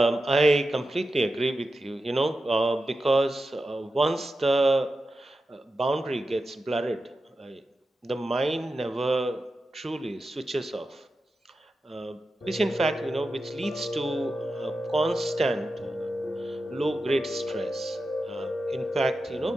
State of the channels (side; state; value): both; normal; correlation 0.91